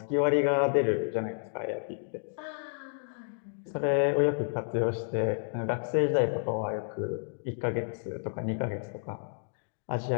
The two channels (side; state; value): right; silent; digital silence